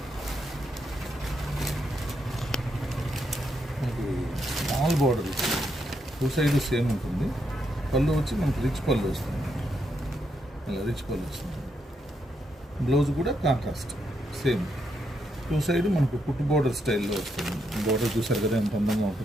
మనకి small border two side same ఉంటుంది. పళ్ళు వచ్చి మనకి రిచ్ పళ్ళు వస్తుంది, ఇలా రిచ్ పళ్ళు వస్తుంది. బ్లౌజ్ కూడా కాంట్రాస్ట్ సేమ్. టూ సైడ్ మనకు కుట్టు బార్డర్ స్టైల్లో వస్తుంది. బార్డర్ చూసారు కదా ఎంత అందంగా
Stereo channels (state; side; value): normal; both; correlation 0.79